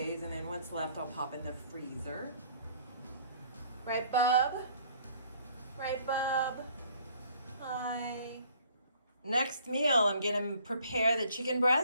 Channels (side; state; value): both; inverted; correlation -0.58